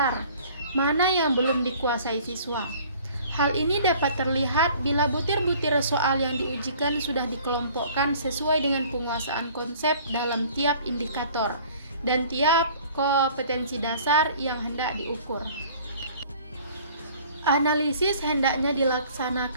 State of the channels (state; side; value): inverted; both; correlation -0.51